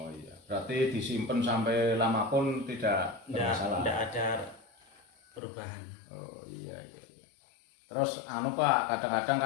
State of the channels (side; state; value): right; drops out; at 5.4 s